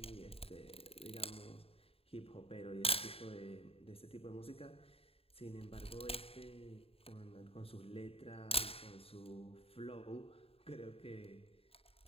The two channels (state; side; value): late; right; 0.28 ms